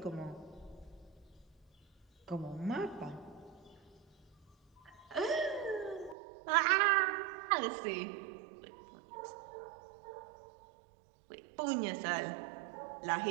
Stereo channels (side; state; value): left; drops out; at 6.2 s